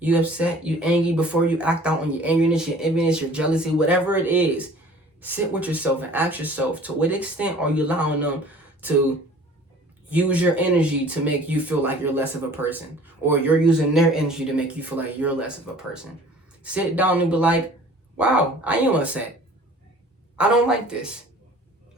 upset, you angry, before you act out on your angriness, your enviness, your jealousy, whatever it is, sit with yourself and ask yourself, to what extent are you allowing them to use your energy to make you feel like you're less of a person, or you're using their energy to make you feel like you're less of a person? Sit down and be like, wow, I am upset. I don't like this.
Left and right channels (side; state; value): both; normal; correlation 0.49